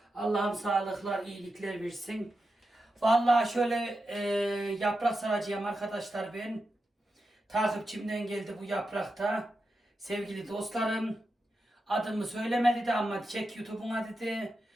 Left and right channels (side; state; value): both; normal; correlation 0.89